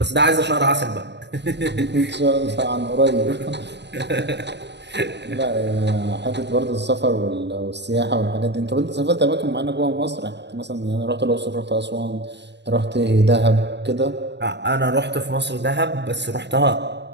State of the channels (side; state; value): left; late; 0.50 ms